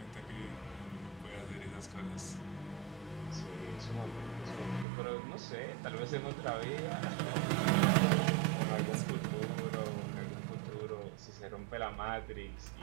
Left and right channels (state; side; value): drops out; left; at 4.9 s